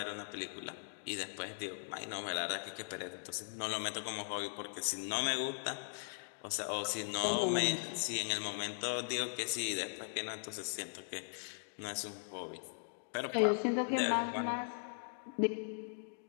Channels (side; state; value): right; silent; digital silence